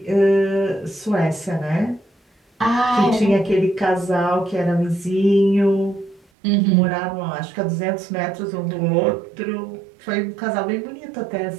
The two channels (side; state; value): left; drops out; at 6.2 s